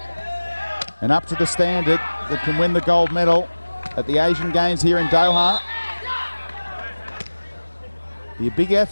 and up to the standard that can win the gold medal at the Asian Games here in Doha. Be a big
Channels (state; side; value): inverted; both; correlation -1.00